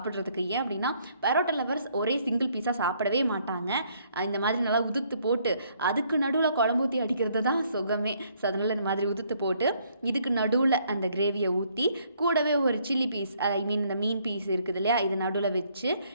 ஏன் அப்படின்னா பரோட்டா லவர்ஸ் ஒரே சிங்கிள் பீஸாக சாப்பிடவே மாட்டாங்க. இந்த மாதிரி நல்லா உதுத்து போட்டு அதுக்கு நடுவில் குழம்பு ஊற்றி அடிக்கிறது தான் சுகமே. ஸோ அதனால் இந்த மாதிரி உதுத்து போட்டு இதுக்கு நடுவில் அந்த கிரேவியை ஊற்றி கூடவே ஒரு சில்லி பீஸ், ஐ மீன் இந்த மீன் பீஸ் இருக்குது இல்லையா, இது நடுவில் வச்சு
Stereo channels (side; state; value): both; inverted; correlation -0.66